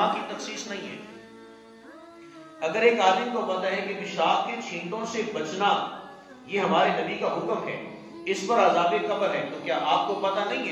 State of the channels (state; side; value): identical; both; correlation 1.00